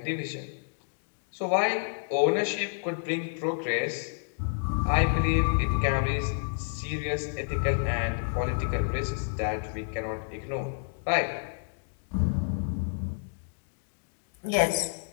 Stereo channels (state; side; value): silent; right; digital silence